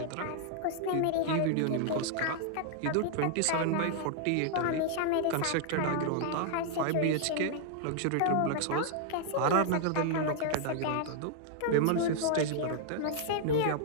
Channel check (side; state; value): both; different; correlation -0.01